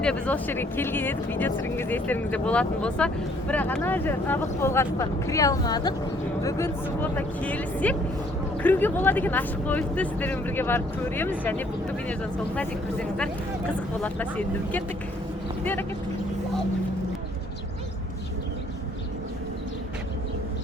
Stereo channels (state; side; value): normal; both; correlation 0.62